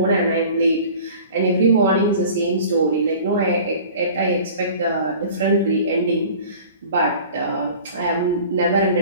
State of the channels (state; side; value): inverted; both; correlation -0.44